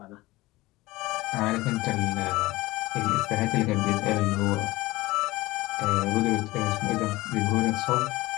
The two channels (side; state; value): right; quieter; 19.5 dB